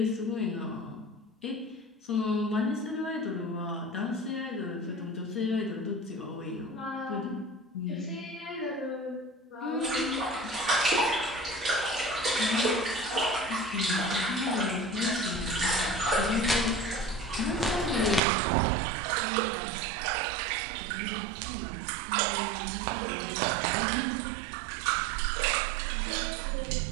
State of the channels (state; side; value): drops out; left; at 18.2 s